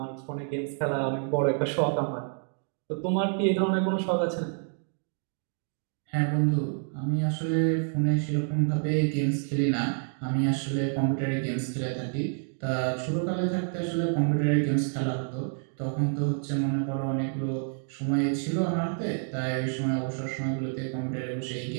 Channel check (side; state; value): left; silent; 59 dB below the other